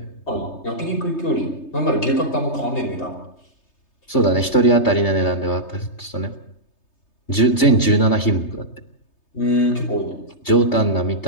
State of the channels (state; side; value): late; right; 3.3 ms